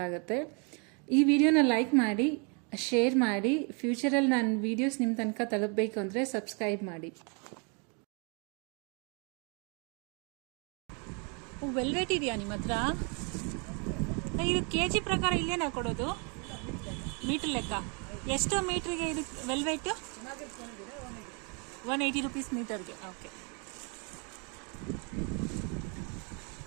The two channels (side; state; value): left; quieter; 35.2 dB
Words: ಈ ವಿಡಿಯೋನ ಲೈಕ್ ಮಾಡಿ, ಶೇರ್ ಮಾಡಿ. ಫ್ಯೂಚರಲ್ಲಿ ನಾನು ವಿಡಿಯೋಸ್ ನಿಮ್ಮ ತನಕ ತಲುಪಬೇಕು ಅಂದರೆ ಸಬ್ಸ್ಕ್ರೈಬ್ ಮಾಡಿ. ವೆಲ್ವೆಟ್ ಇದೆಯಾ ನಿಮ್ಮ ಹತ್ರ? ಇದು ಕೆಜಿ ಪ್ರಕಾರ ಇಲ್ಲೇನಾ ಕೊಡೋದು? ಮೀಟರ್ ಲೆಕ್ಕ ಎಷ್ಟು ಮೀಟ್ರಿಗೆ ಇದು ವೆಲ್ವೆಟ್? 180 ರೂಪೀಸ್ ಮೀಟರ್ಗೆ. ಓಕೆ,